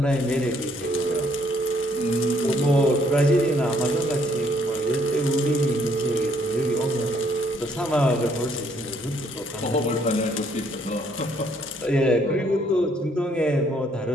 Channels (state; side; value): normal; both; correlation 0.67